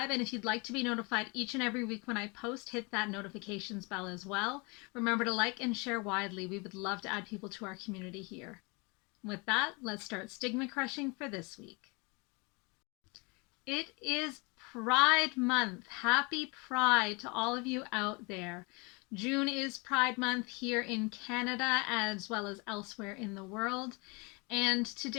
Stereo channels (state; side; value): quieter; right; 29.3 dB